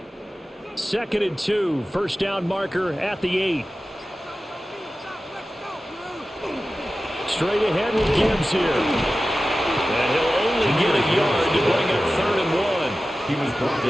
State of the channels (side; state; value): both; normal; correlation 0.95